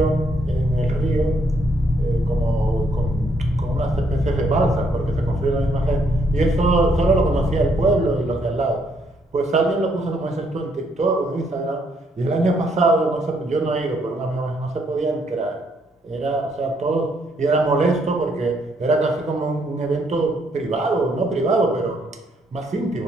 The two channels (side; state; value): both; normal; correlation 0.72